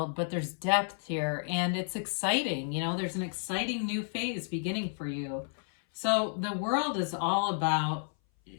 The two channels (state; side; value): silent; right; 57 dB below the other